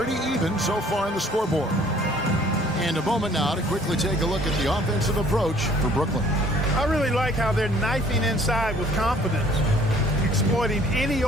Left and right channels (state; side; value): normal; both; correlation 0.57